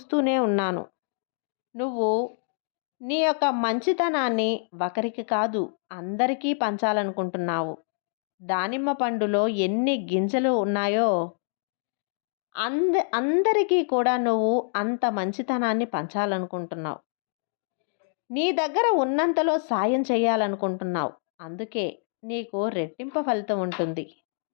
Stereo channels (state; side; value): silent; right; digital silence